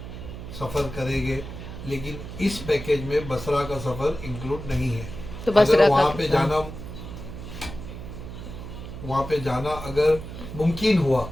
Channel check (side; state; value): right; noise; hum, 10 dB below the sound